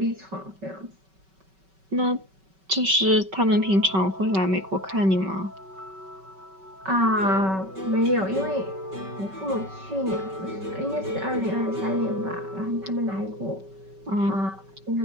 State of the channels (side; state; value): left; late; 5.2 ms